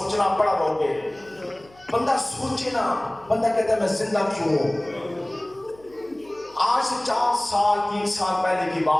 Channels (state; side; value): noise; left; hum, 27 dB below the sound